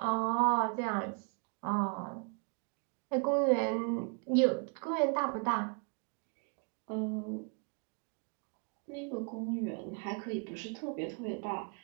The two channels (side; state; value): left; quieter; 39.9 dB